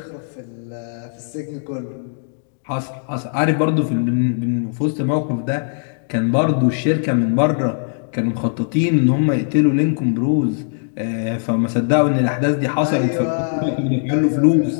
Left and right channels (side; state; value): right; silent; digital silence